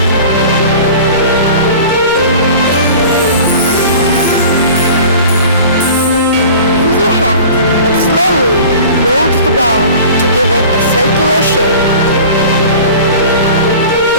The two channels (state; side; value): inverted; both; correlation -0.41